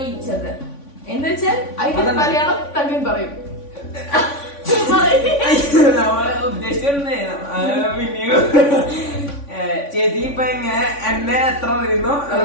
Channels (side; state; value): right; late; 3.5 ms